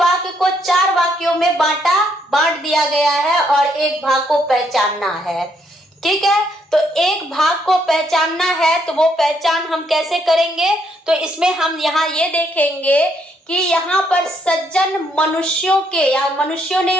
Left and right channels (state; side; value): normal; both; correlation 0.72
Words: को 4 वाक्यों में बांट दिया गया है और एक भाग को पहचानना है। ठीक है, तो एक भाग को पहचानना है, तो वो पहचान हम कैसे करेंगे, तो इसमें हम यहाँ ये देखेंगे कि यहाँ पर सज्जन मनुष्यों के, या मनुष्यों नहीं